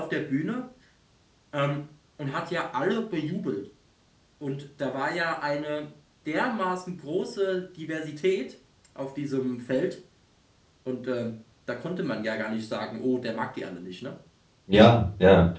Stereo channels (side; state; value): both; identical; correlation 1.00